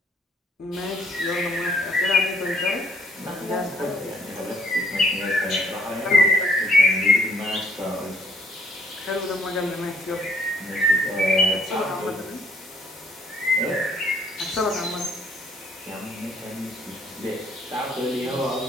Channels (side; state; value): both; normal; correlation 0.63